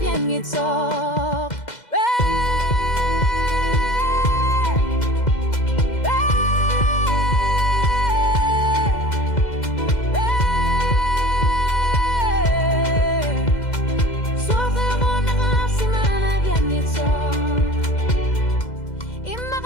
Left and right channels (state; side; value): late; right; 2.1 ms